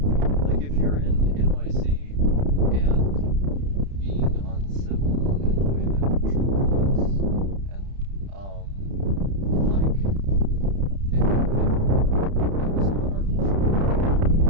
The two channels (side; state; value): left; late; 30 ms